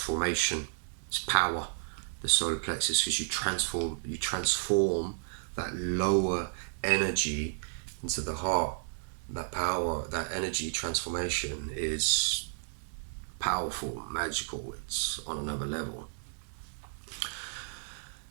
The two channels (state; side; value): silent; left; digital silence